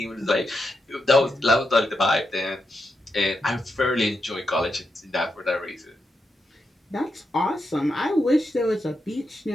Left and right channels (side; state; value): both; normal; correlation 0.85